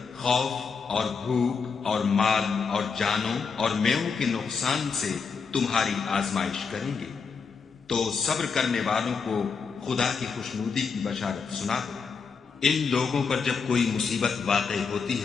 خوف اور بھوک اور مال اور جانوں اور میووں کے نقصان سے تمہاری آزمائش کریں گے، تو صبر کرنے والوں کو خدا کی خوشنودی کی بشارت سنا دو۔ ان لوگوں پر جب کوئی مصیبت واقع ہوتی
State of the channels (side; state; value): right; quieter; 5.5 dB